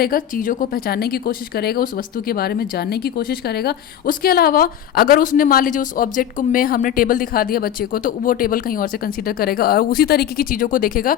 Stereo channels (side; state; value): right; quieter; 10.3 dB